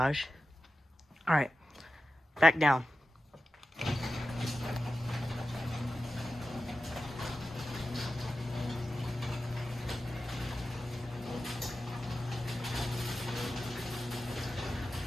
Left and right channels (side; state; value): both; normal; correlation 0.93